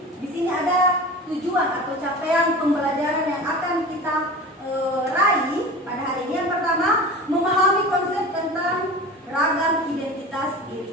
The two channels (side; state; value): both; normal; correlation 0.34